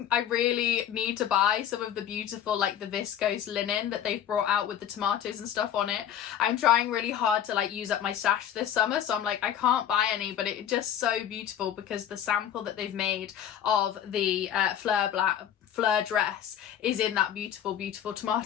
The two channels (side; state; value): right; quieter; 10.0 dB